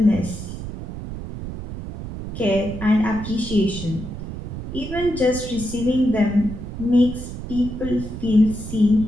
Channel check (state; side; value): noise; right; rumble, 9 dB below the sound